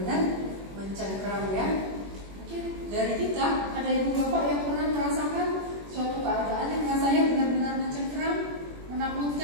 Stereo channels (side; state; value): left; late; 21 ms